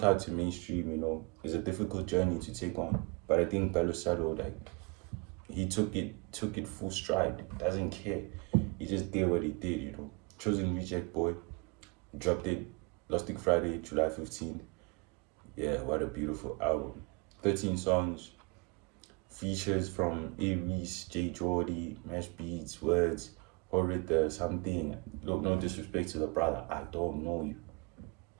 to mainstream, is a difficult journey to take on. But I think Belo Salo, like, he took it full stride. Doesn't care. He just did what he did. Chosen Reject Boy, dropped it last week Friday, July 15th. Yeah, what a beautiful album. 13 songs, features from Aries, J. Jordy, Mesh Beats, Words, Horita, something. Look, no disrespect to the brother, I don't know you.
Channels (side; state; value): left; quieter; 30.1 dB